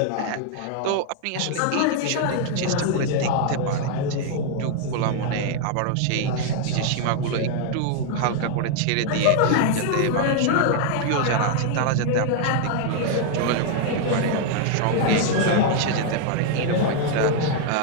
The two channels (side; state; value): both; different; correlation 0.00